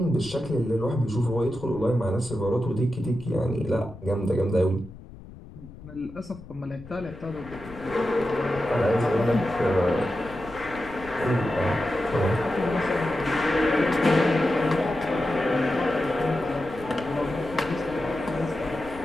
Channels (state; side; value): noise; left; rumble, 17 dB below the sound